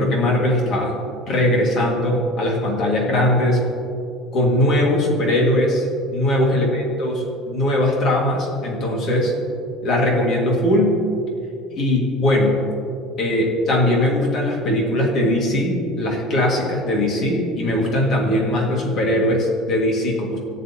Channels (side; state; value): both; normal; correlation 0.36